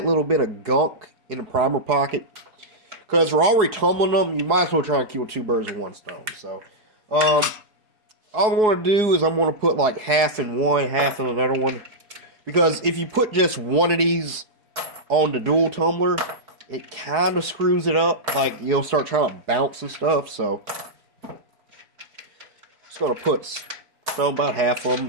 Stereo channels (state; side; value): late; left; 4.8 ms